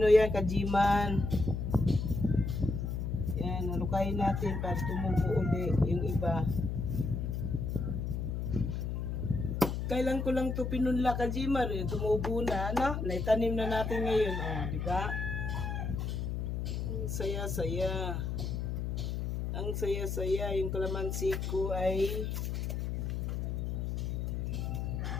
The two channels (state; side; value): noise; left; hum, 2 dB below the sound